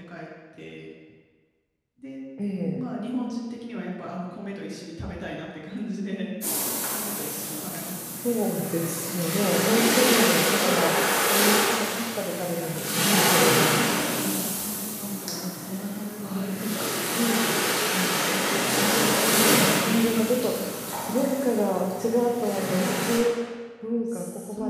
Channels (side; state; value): both; identical; correlation 1.00